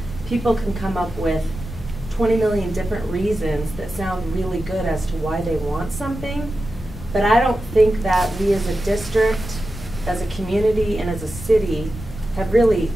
people can come up with 20 million different reasons that sound really good as to why they want something. But I don't think that we as a district, as a community, and as a city have really,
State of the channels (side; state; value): left; noise; rumble, 12 dB below the sound